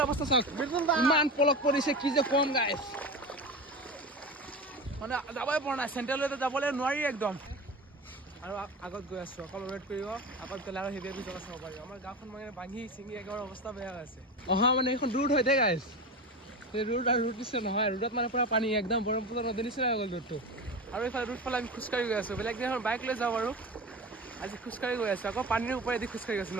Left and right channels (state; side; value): normal; both; correlation 0.26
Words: অৱস্থা চাওক মিদুল দা ইমান পলক পৰিছে কি যে কম গাইস মানে যাবই পৰা নাই সেন্ট্ৰালতে যাবলৈ নোৱাৰি একদম আৰু আগত গৈ আছো অকল ৱেট কৰিব আগত গলে আৰু হেভি জগা চাব পাৰিব আমাৰ গাঁওখন মানে ভাঙি চিঙি একেবাৰে অৱস্থা বেয়া হৈছে অহা মানে এখন ৰুট হৈ থাকে গাইস এই ৰুট আৰু ৰুট দিছে নহয় ৰুটত মানে পুৰা পানী একদম ব্ৰহ্মপুত্ৰ নদীৰ নিচিনা হৈ গ'ল ৰুটটো আৰু এইফালে ৰুট ফালে আমি খোজকাঢ়ি গৈ আছো বেলেগ দিনাখন বাইক লৈ যাওঁ আৰু আজি খোজকাঢ়ি গৈ আছো আকৌ পানীৰ ওপৰেদি খোজকাঢ়ি আছো